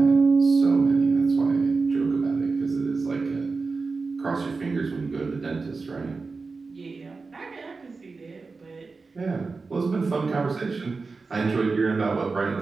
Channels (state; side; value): quieter; left; 4.2 dB